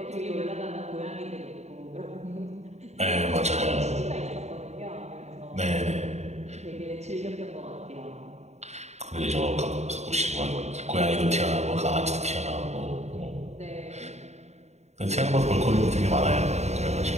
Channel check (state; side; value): late; left; 0.32 ms